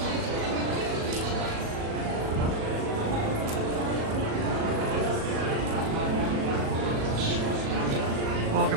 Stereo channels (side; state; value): left; late; 37 ms